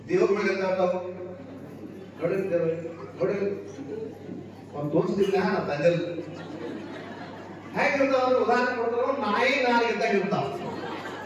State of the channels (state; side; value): identical; both; correlation 1.00